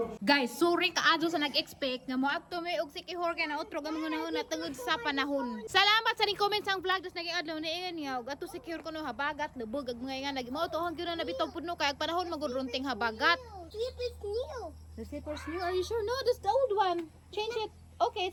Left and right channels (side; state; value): both; identical; correlation 1.00